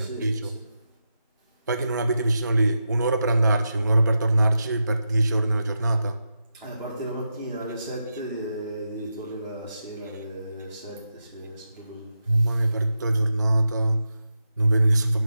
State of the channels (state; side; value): inverted; both; correlation -0.88